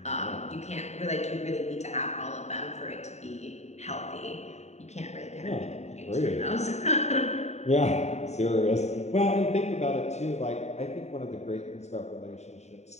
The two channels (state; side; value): late; right; 0.32 ms